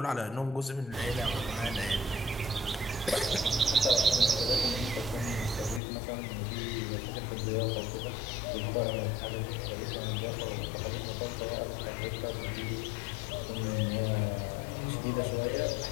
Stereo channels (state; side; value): drops out; right; at 5.8 s